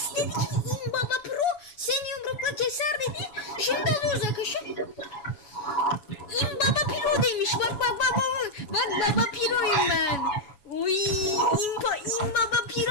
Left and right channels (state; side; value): late; right; 7.1 ms